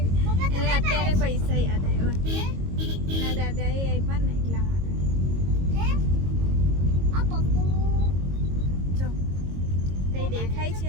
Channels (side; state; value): left; late; 22 ms